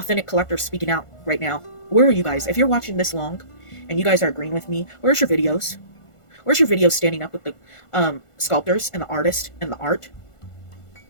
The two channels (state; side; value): late; right; 1.5 ms